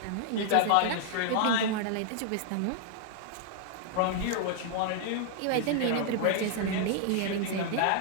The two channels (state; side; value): different; both; correlation 0.00